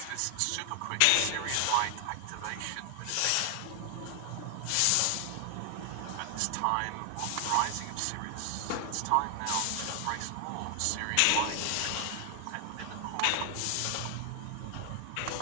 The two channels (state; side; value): different; both; correlation 0.00